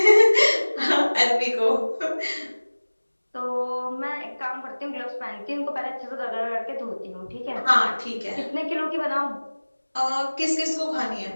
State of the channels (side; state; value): both; inverted; correlation -1.00